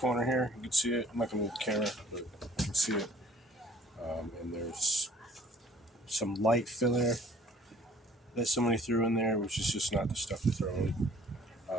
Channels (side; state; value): both; normal; correlation 0.54